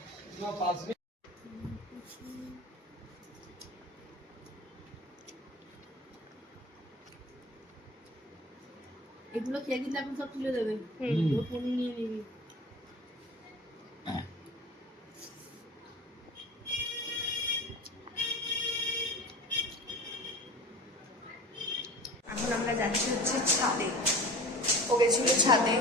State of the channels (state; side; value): normal; both; correlation 0.37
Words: এগুলো খেয়ে দিলে আপনি সব তুলে দেবেন, ফোন নিয়ে নিবি। এখন আমরা যাচ্ছি হচ্ছে ছাদে। ও গেছিল ছাদে